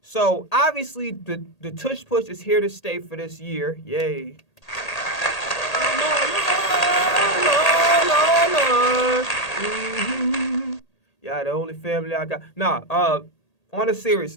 So obviously the tush push is here to stay for this year. Yay. Yeah, the only family I got. Nah, on a serious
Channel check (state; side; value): late; right; 1.8 ms